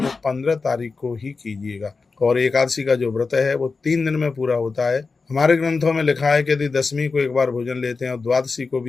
15 तारीख को ही कीजिएगा, और एकादशी का जो व्रत है वो 3 दिन में पूरा होता है। हमारे ग्रंथों में लिखा है कि यदि दशमी को एक बार भोजन लेते हैं और द्वादशी को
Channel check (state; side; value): quieter; right; 4.4 dB